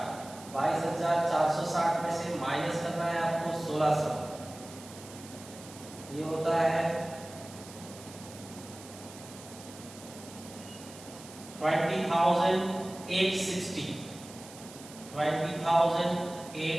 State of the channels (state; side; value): noise; right; hiss, 17 dB below the sound